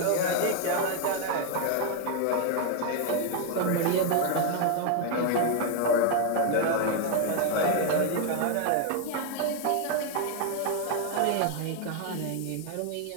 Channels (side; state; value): both; different; correlation 0.01